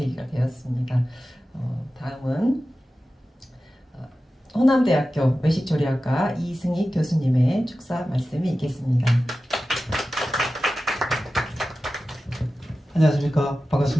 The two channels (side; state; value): both; normal; correlation 0.94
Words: 되었습니다. 다음은 호남대학교 외식조리학과 이승희 교수님의 축사 말씀이 있겠습니다. 안녕하십니까.